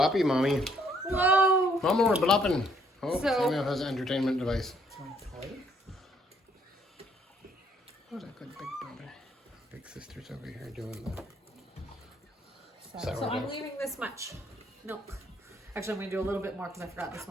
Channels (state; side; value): normal; both; correlation 0.67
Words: mommy. Whoa. Mama, we're blopping. Oh, So- Samuel has an entertainment device. What a good big brother. Big sister's over here doing the So I'm leaving this much milk. Actually, I'm going to do a little bit more because I forgot this